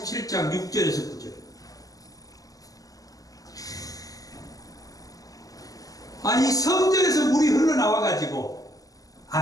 6절에서 9절. 아니 성전에서 물이 흘러나와 가지고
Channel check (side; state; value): right; late; 0.17 ms